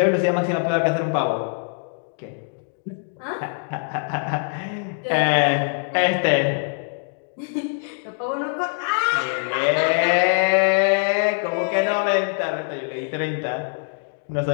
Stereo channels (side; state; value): right; silent; 63 dB below the other